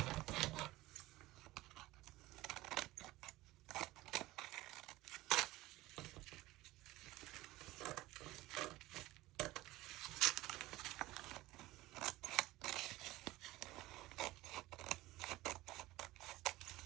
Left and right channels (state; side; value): quieter; left; 18.2 dB